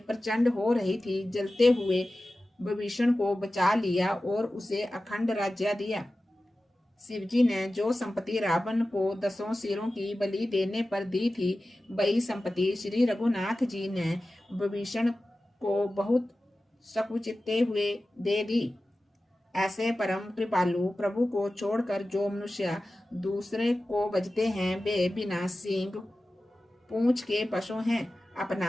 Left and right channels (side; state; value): both; normal; correlation 0.95